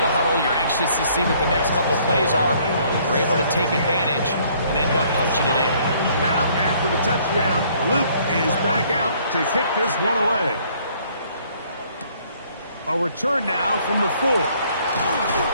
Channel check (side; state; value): both; inverted; correlation -0.62